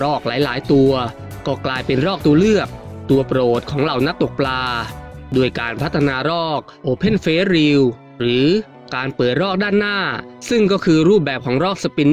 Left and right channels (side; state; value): both; identical; correlation 1.00